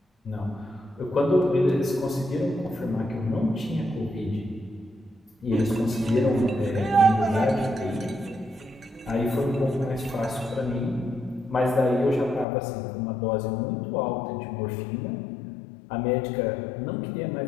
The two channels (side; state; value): right; drops out; at 12.5 s